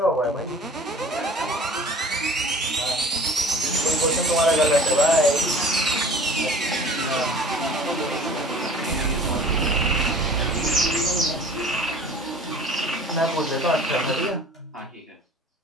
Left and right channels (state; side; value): normal; both; correlation 0.46